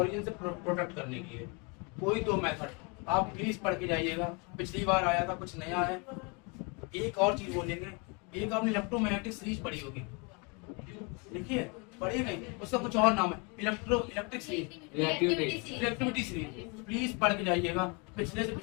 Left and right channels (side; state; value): right; quieter; 31.9 dB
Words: से प्रोटेक्ट करने के लिए। कोई दो मेथड आप प्लीज पढ़ के जाइएगा। पिछली बार आया था, कुछ नया है। एक और चीज बोलेंगे, एक आपने इलेक्ट्रोमैग्नेटिक सीरीज पढ़ी होगी, देखिए पढ़ी नहीं, उसका कुछ और नाम है, electric series, reactivity series. Please पढ़ के जाइएगा। पिछले से